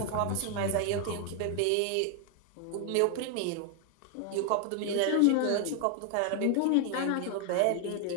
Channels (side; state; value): both; different; correlation 0.00